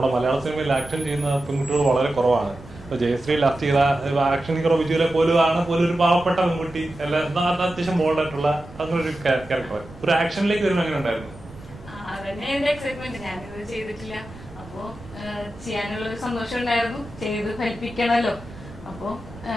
മലയാള സിനിമയിൽ ആക്ഷൻ ചെയ്യുന്ന പെൺകുട്ടികൾ വളരെ കുറവാണ്. ഇപ്പൊ ജയശ്രീ ലാസ്റ്റ് ചെയ്ത ആക്ഷൻ ഹീറോ വിജുവിലെ പോലും ഒരു പാവപ്പെട്ട പെൺകുട്ടി എല്ലാം അത്യാവശ്യം ബോൾഡായിട്ടുള്ള അങ്ങനെ ഒരു ക്യാരക്ടർ. ഒരു ആക്ഷനിലേക്ക് വരുമ്പോൾ എങ്ങനെ ഉണ്ടായിരുന്നു? അതന്നെ എന്റെ എക്സൈറ്റ്മെന്റ്. ഞാനിത് ചെയ്തിട്ടില്ല, അപ്പോ ചെയ്യാനുള്ള ഒരു സന്തോഷം ഉണ്ടായിരുന്നു. ചെയ്ത് ഫലിപ്പിക്കണല്ലോ. അപ്പോ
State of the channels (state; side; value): noise; right; rumble, 18 dB below the sound